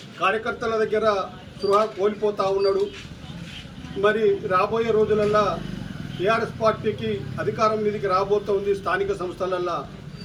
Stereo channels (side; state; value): both; identical; correlation 1.00